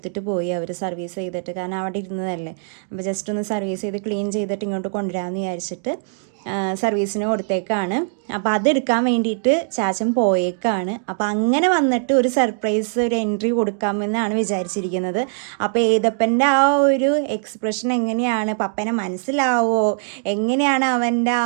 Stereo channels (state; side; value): silent; left; digital silence